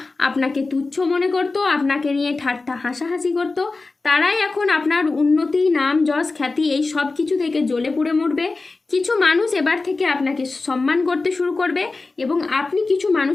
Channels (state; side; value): quieter; right; 3.6 dB